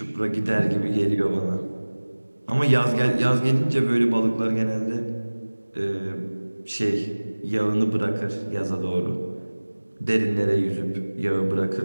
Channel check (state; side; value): inverted; both; correlation -1.00